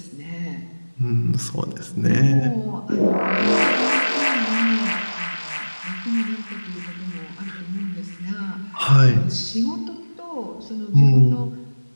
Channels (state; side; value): inverted; both; correlation -1.00